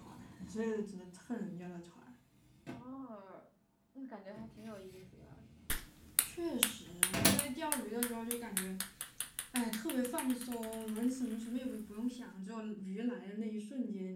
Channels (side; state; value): both; identical; correlation 1.00